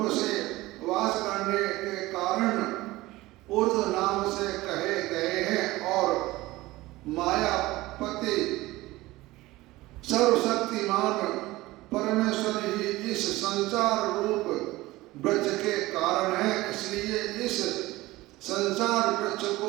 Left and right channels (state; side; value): quieter; left; 18.9 dB